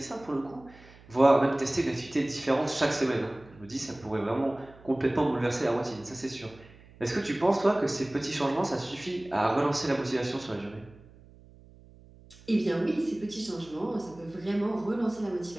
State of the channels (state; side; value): noise; right; hum, 23 dB below the sound